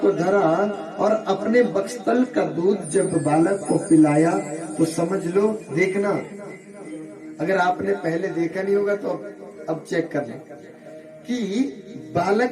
को धरा और अपने बक्स्तल का दूध जब बालक को पिलाया तो समझ लो, देखना, अगर आपने पहले देखा नहीं होगा तो अब चेक कर लें कि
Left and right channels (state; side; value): identical; both; correlation 1.00